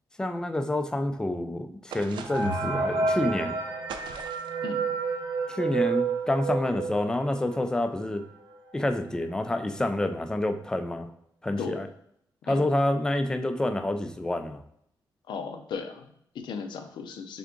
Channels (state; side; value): normal; both; correlation 0.83